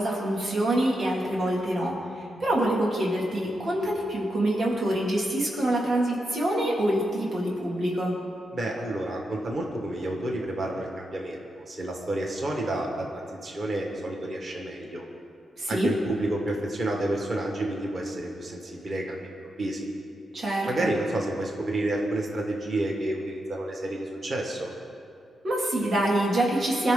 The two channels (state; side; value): normal; both; correlation 0.85